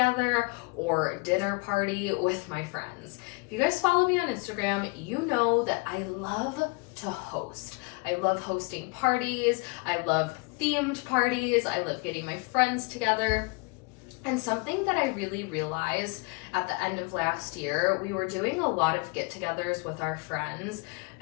or dinner party with my friends. If you guys follow me on Instagram, you know that I love to host. I love hosting parties. I love themed parties. I love getting my friends together. And something that I really realized at the end of last year, we were doing a lot of get-togethers with our friends,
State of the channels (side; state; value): right; quieter; 29.7 dB